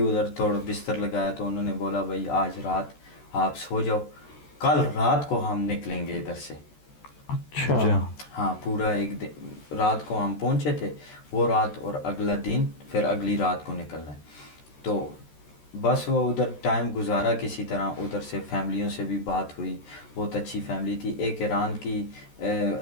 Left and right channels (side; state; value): right; late; 13 ms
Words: थोड़ा बिस्तर लगाया तो उन्होंने बोला भाई आज रात आप सो जाओ, कल रात को हम निकलेंगे इधर से। अच्छा। हाँ पूरा एक दिन रात को हम पहुंचे थे, वो रात और अगला दिन, फिर अगली रात को निकलना है। तो बस वो उधर टाइम गुजारा किसी तरह, उधर से फैमिलियों से भी बात हुई, बहुत अच्छी फैमिली थी। एक ईरान की